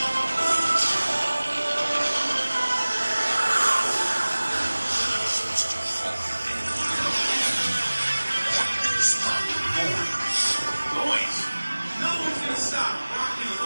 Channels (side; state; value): both; inverted; correlation -1.00